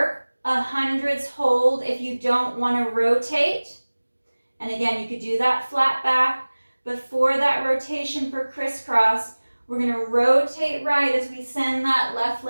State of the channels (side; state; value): both; inverted; correlation -1.00